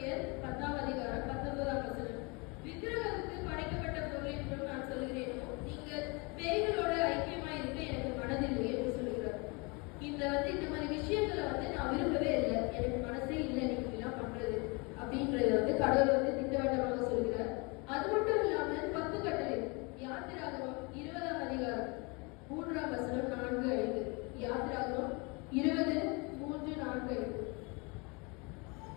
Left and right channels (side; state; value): right; quieter; 29.4 dB